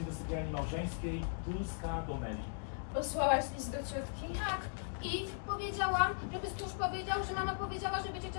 do sypialni małżeńskiej, Dulska do Meli. Posłałaś list do ciotki? Tak. I powiedziałam, żeby stróż powiedział, że mama powiedziała, żeby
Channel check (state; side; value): silent; right; digital silence